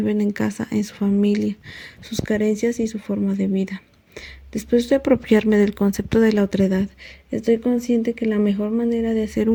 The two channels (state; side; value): identical; both; correlation 1.00